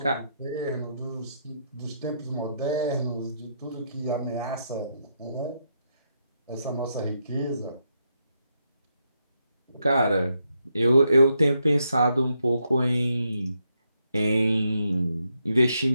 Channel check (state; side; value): inverted; both; correlation -0.80